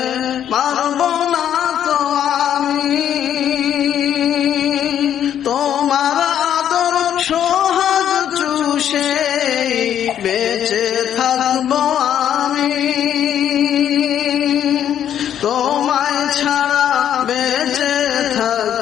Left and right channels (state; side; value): quieter; right; 10.0 dB